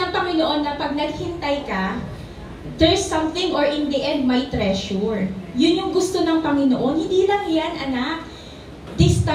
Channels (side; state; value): both; identical; correlation 1.00